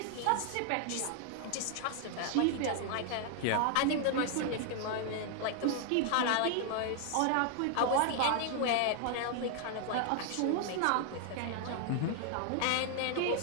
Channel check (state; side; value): different; both; correlation 0.00